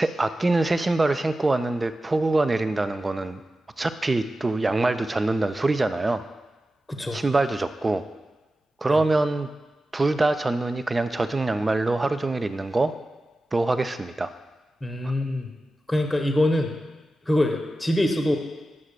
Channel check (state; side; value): normal; both; correlation 0.94